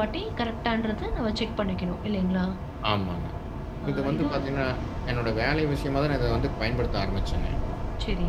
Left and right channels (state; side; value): identical; both; correlation 1.00